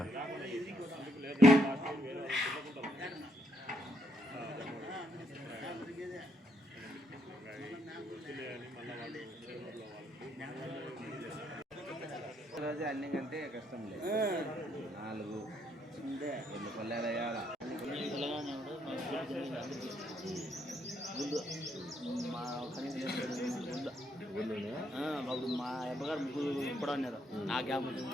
రోజు అన్ని కంటే కష్టం లేదు. 4 2 పల్లెలు వేయాల. మా మా అబ్బగారు ముగ్గురు కూడా ఉన్నారు. ఆ గ్యాప్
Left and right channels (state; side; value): normal; both; correlation 0.75